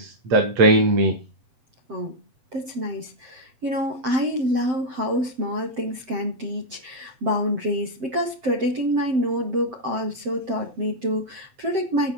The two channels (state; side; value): late; left; 7.7 ms